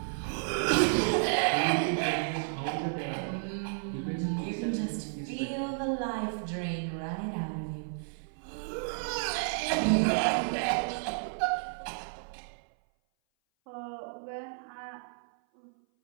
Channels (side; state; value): left; silent; 56 dB below the other